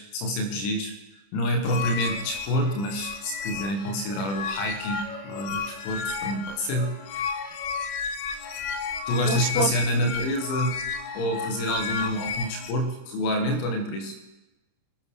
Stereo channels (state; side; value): late; right; 30 ms